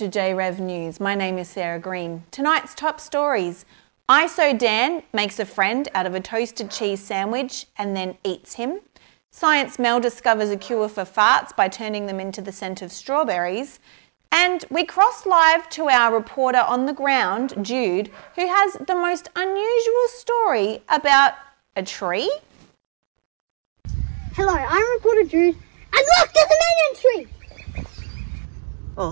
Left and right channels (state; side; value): silent; left; digital silence